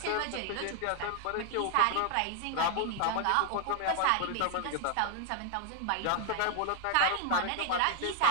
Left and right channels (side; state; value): both; different; correlation 0.00